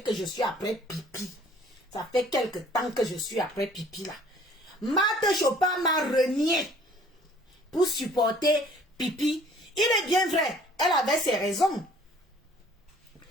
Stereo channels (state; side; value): normal; both; correlation 0.54